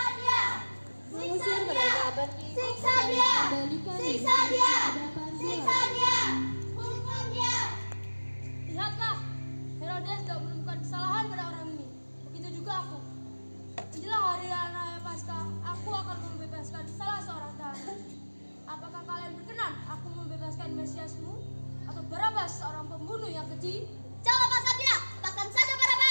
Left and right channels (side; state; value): both; inverted; correlation -1.00